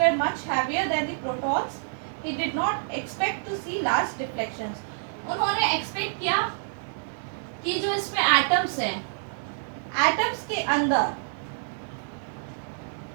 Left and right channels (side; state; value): left; silent; 60 dB below the other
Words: much heavier than the protons, he did not expect to see large deflections. उन्होंने expect किया कि जो इसमें atoms हैं, atoms के अंदर